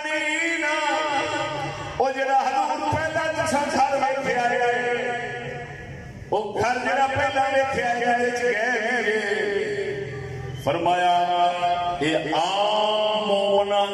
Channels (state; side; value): identical; both; correlation 1.00